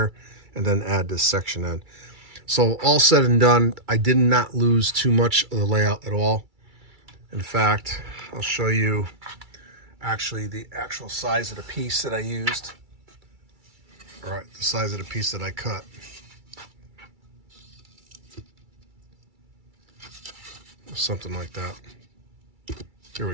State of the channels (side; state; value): left; late; 2.3 ms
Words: and then add this section in. So all said and done, I did not lose too much of the layout at all. In fact, I'll show you actually the actual size of the piece that I used. All right, the size of the piece that I cut. Something like that. Here